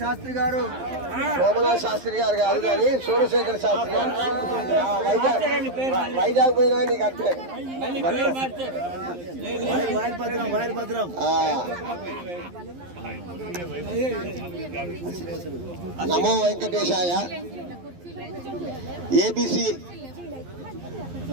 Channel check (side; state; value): left; late; 11 ms